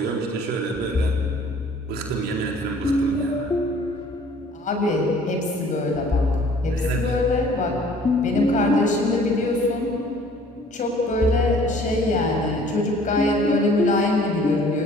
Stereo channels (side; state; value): both; normal; correlation 0.54